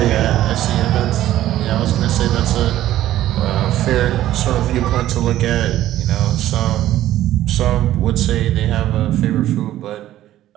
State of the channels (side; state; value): left; quieter; 13.6 dB